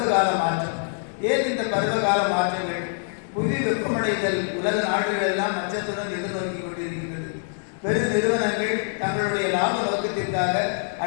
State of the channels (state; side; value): silent; right; digital silence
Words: மாற்றம். ஏன் இந்த பருவகால மாற்றங்கள்? புவி வெப்பமடைதல் உலக நாடுகள் எல்லாம் அச்சத்துடன் எதிர்நோக்கி கொண்டிருக்கின்றது. பெரு நிறுவனங்கள் தங்களுடைய லாப நோக்கத்திற்காக